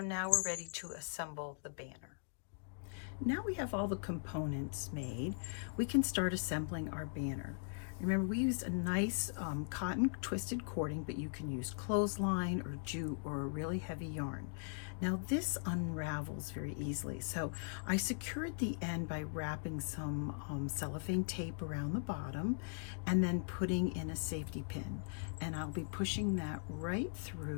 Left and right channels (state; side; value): silent; right; digital silence